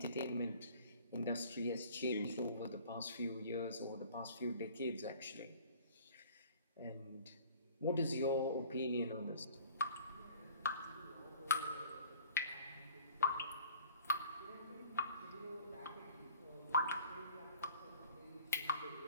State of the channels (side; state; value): both; inverted; correlation -0.50